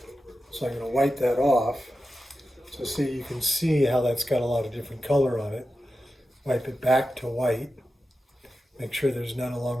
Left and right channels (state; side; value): normal; both; correlation 0.91